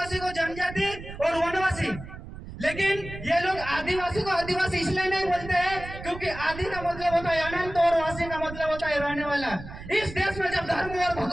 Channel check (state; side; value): noise; right; rumble, 12 dB below the sound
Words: को जनजाति और वनवासी, लेकिन ये लोग आदिवासी को आदिवासी इसलिए नहीं बोलते हैं क्योंकि आदि का मतलब होता है अनंत और वासी का मतलब होता है रहने वाला। इस देश में जब धर्म और